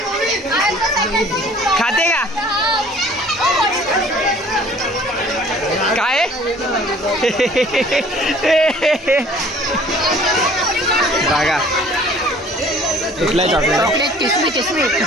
खाते का काय बघा कुठला चॉकलेट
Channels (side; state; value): both; normal; correlation 0.52